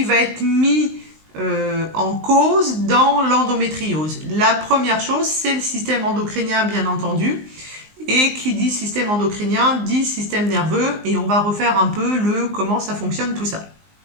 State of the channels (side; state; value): left; late; 19 ms